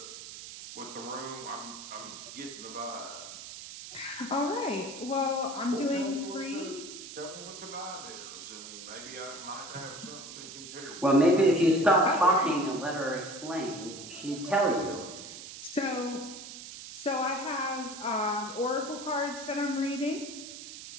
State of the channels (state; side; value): noise; right; hiss, 12 dB below the sound